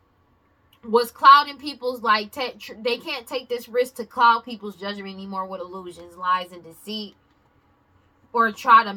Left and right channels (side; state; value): both; identical; correlation 1.00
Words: was clouding people's, they can't take this risk to cloud people's judgment anymore with illusions, lies, and deceit, or try to